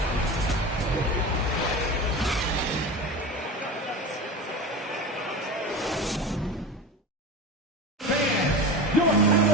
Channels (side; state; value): both; normal; correlation 0.28